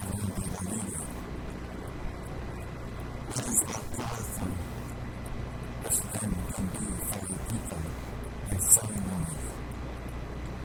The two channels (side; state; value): both; identical; correlation 1.00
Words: that arena. That is how powerful this drum can be for our people, our ceremonies.